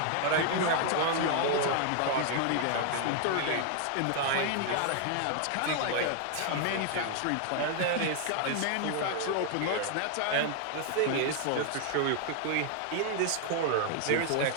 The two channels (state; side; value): different; both; correlation 0.00